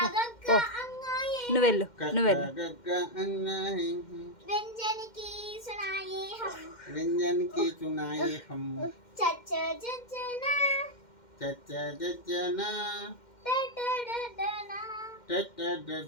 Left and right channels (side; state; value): right; late; 2.1 ms